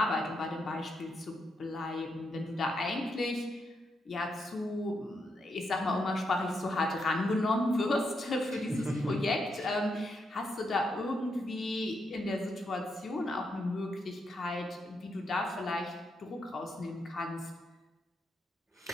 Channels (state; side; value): normal; both; correlation 0.81